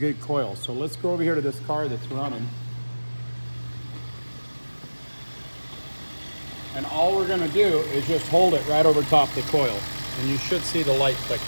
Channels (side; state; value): both; inverted; correlation -1.00